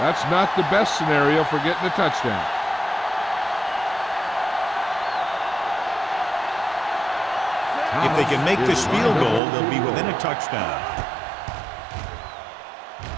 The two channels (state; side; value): drops out; left; at 9.4 s